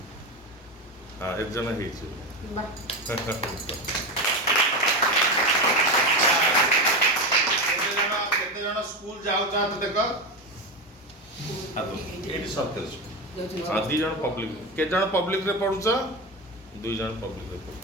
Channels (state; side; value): normal; both; correlation 0.17